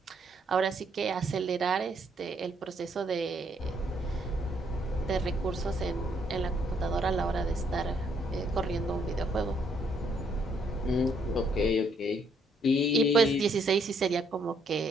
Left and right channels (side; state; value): both; normal; correlation 0.70